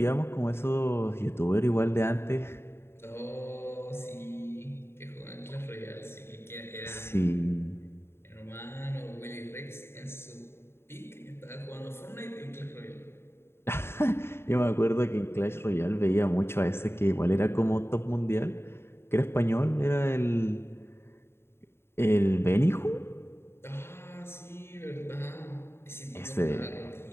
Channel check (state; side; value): late; right; 0.12 ms